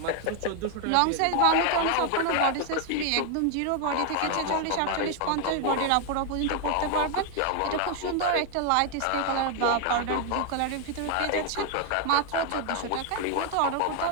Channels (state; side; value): different; both; correlation 0.00